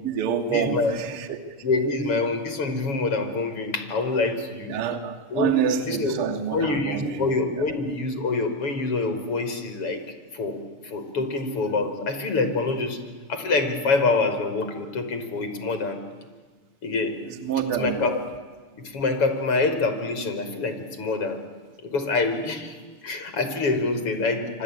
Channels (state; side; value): late; right; 7.2 ms